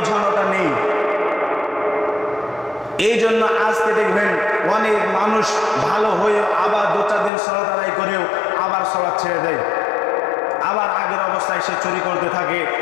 নেই। এই জন্য আজকে দেখবেন অনেক মানুষ ভালো হয়ে আবার 2-4 দিন সালাত আদায় করেও আবার সালাত ছেড়ে দেয়, আবার আগের অবস্থায় সে চুরি করতে থাকে,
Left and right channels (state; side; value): drops out; right; at 7.3 s